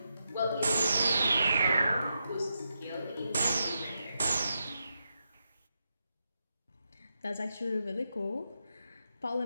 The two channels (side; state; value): both; inverted; correlation -0.85